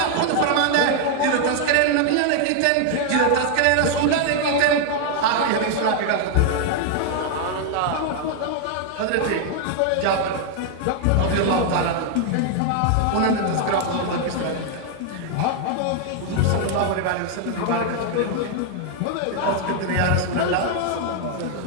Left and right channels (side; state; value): both; different; correlation 0.00